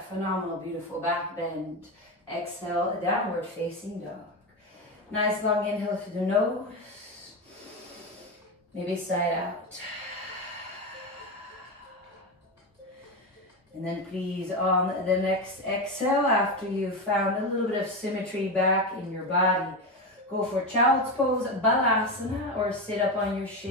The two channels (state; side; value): normal; both; correlation 0.16